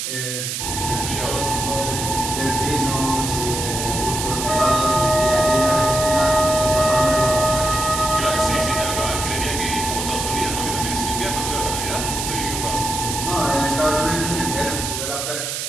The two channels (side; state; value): right; noise; hiss, 4 dB below the sound